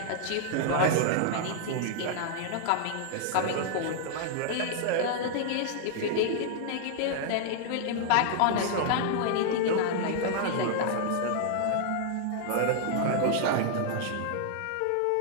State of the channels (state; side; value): different; both; correlation -0.01